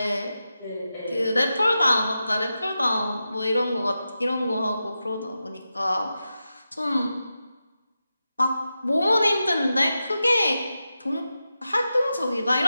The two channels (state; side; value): inverted; both; correlation -0.91